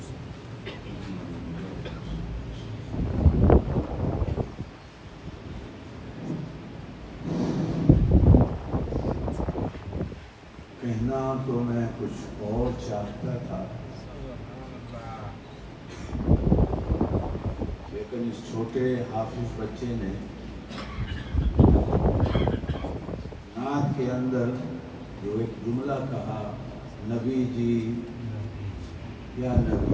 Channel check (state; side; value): identical; both; correlation 1.00